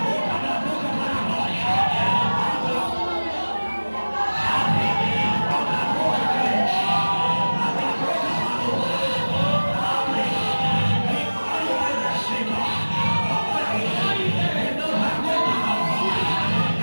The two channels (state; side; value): inverted; both; correlation -1.00